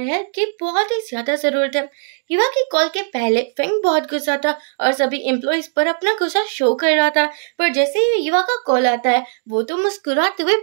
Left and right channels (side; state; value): left; silent; digital silence